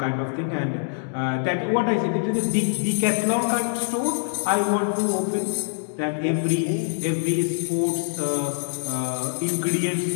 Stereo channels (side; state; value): right; silent; digital silence